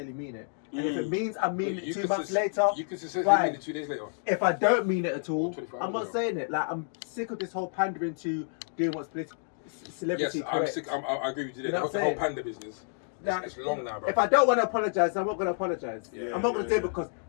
mean it. And if it means I mean it 2 months later, You can sincerely fine. mean it 2 days later. If I don't mean it at all, 24 I'm not hours saying it. Like, I'm sick of this whole pandering to doing what's celebrity Yes, correct. I agree with you there. You know what The I'm whole saying? panda business. Now, It's long now, bro. If I don't want to apologize, I'm not going to apologize. Yeah, I'm not going to yeah, say because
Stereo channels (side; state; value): right; silent; digital silence